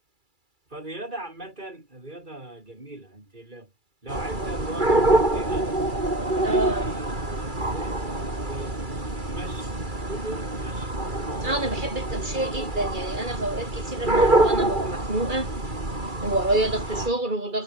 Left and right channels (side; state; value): left; late; 2.3 ms